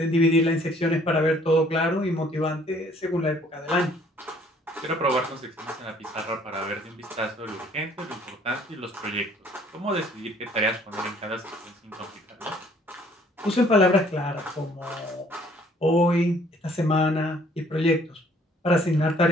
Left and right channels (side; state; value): both; normal; correlation 0.59